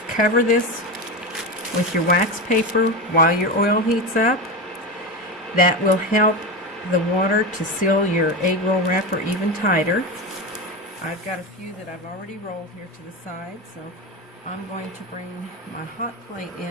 cover this with your wax paper while your oil heats up. That will help the water to seal your egg roll wrapper even tighter. I've got a few that I've already rolled here to the side, so I'm going to bring my hot plate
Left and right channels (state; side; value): normal; both; correlation 0.20